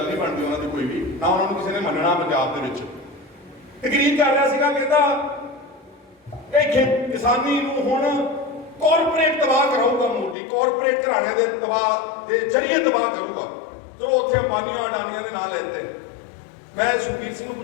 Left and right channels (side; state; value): right; drops out; at 10.4 s